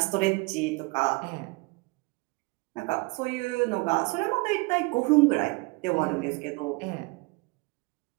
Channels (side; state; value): left; quieter; 26.7 dB